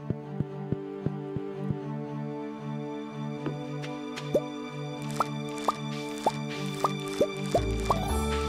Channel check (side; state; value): both; identical; correlation 1.00